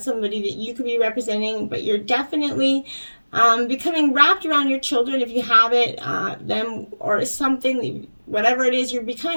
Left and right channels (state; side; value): inverted; both; correlation -1.00